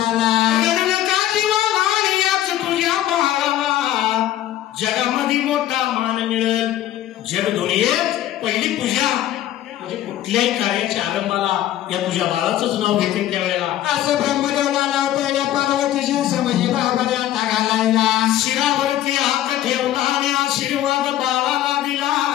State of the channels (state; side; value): quieter; right; 12.9 dB